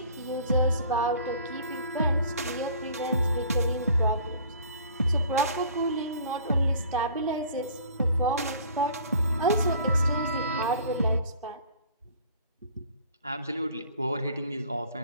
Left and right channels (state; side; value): inverted; both; correlation -0.49